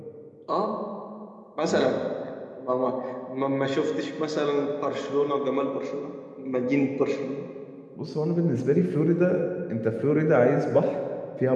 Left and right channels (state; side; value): identical; both; correlation 1.00